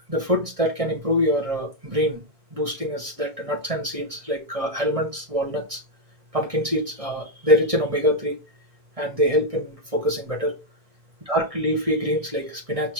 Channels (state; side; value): late; left; 1.6 ms